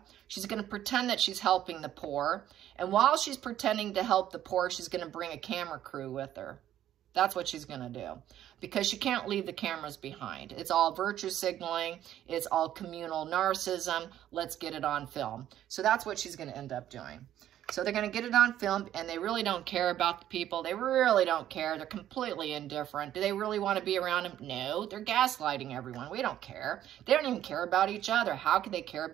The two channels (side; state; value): left; quieter; 11.8 dB